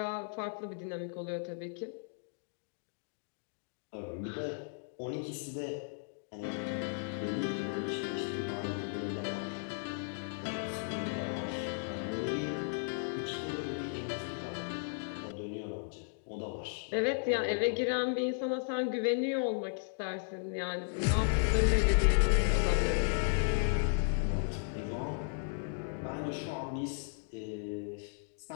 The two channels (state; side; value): silent; right; digital silence